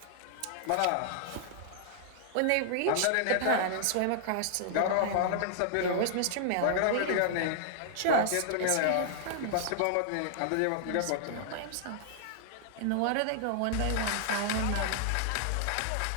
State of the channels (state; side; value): different; both; correlation -0.01